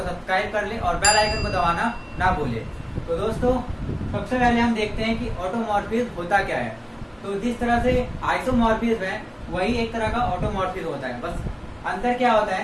सब्सक्राइब कर लें और बेल आइकन को दबाना ना भूलें। तो दोस्तों, सबसे पहले हम देखते हैं कि ऑटोमॉर्फिज्म होता क्या है। तो जिस तरह से आइसोमॉर्फिज्म है वही एक तरह का ऑटोमॉर्फिज्म होता है। बस अंतर क्या होता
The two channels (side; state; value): both; identical; correlation 1.00